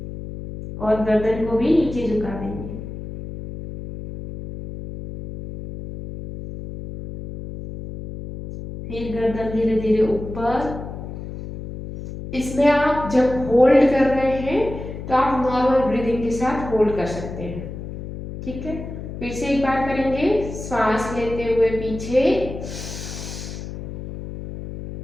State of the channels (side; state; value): left; noise; hum, 9 dB below the sound